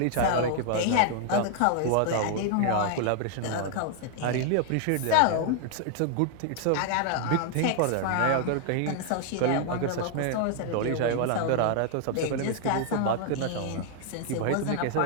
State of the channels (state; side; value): different; both; correlation 0.00